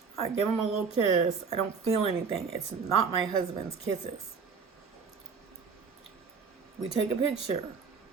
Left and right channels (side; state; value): left; quieter; 5.6 dB